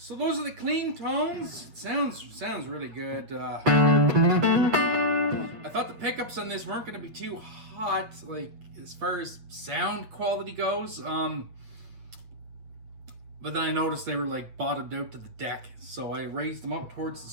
those are the clean tones. It sounds really good. I thought the pickups on this weren't going to be too hot, like as far as sound quality goes. But then I noticed they were like bottomed out to the deck, so I raised them up towards the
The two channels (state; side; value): late; left; 8.9 ms